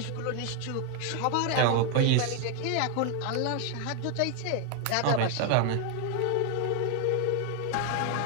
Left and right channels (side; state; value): both; different; correlation 0.00